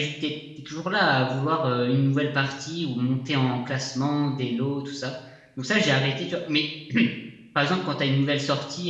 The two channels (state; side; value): identical; both; correlation 1.00